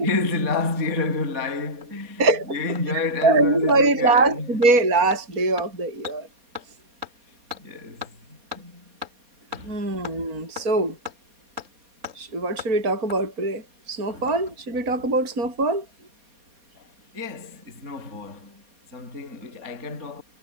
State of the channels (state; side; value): late; left; 4.2 ms